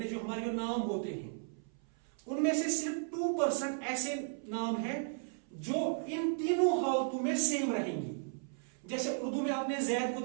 जो हमारे जो नाम होते हैं, उनमें से सिर्फ 2% ऐसे नाम हैं जो इन तीनों हालतों में सेम रहेंगे। जैसे उर्दू में आपने जैद को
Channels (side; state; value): left; silent; 54 dB below the other